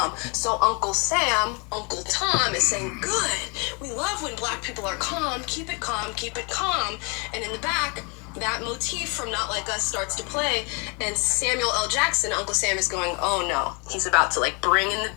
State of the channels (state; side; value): quieter; right; 32.4 dB